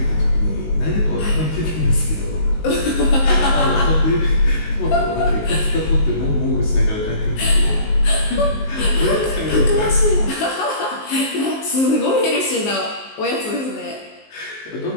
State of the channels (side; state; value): right; late; 19 ms